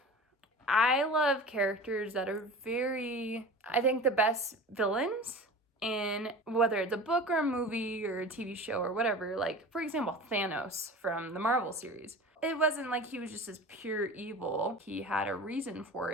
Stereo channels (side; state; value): both; normal; correlation 0.36